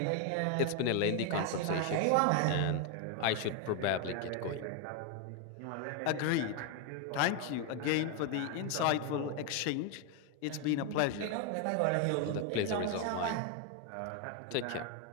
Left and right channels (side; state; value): both; different; correlation 0.01